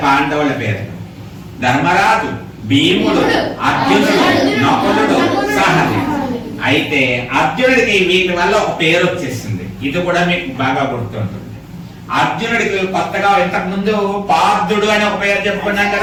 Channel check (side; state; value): both; identical; correlation 1.00